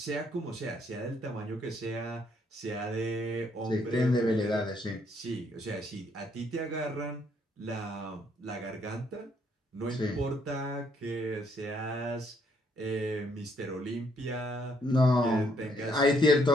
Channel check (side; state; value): both; normal; correlation 0.70